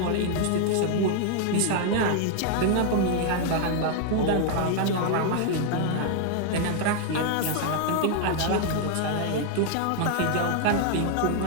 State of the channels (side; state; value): both; different; correlation 0.00